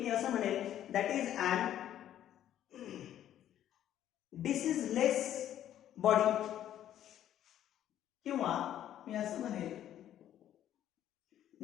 मी असं म्हणेल दॅट इज अन डिसीजलेस बॉडी, किंवा मी असं म्हणेल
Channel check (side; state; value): right; quieter; 11.4 dB